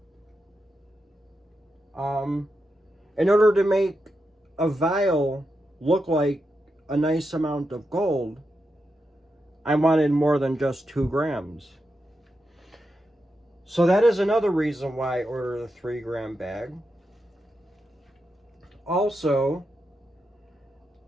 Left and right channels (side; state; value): both; normal; correlation 0.87